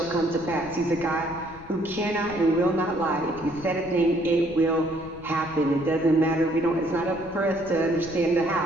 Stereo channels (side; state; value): left; noise; rumble, 19 dB below the sound